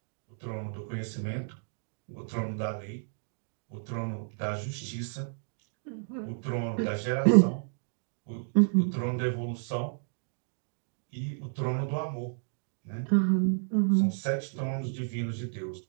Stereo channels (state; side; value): silent; left; digital silence